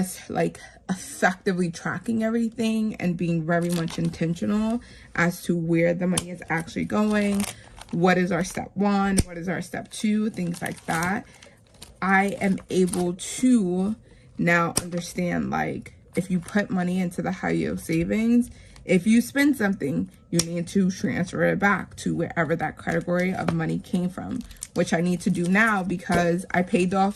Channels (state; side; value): identical; both; correlation 1.00